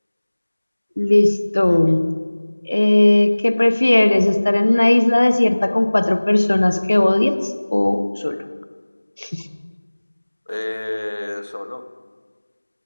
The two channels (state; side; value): inverted; both; correlation -1.00